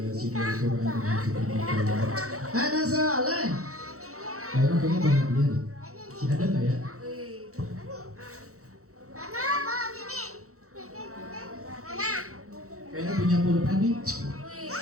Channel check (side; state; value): left; late; 0.64 ms